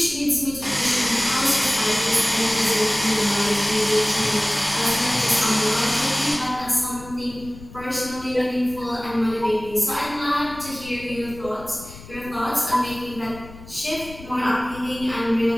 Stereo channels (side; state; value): left; noise; rumble, 17 dB below the sound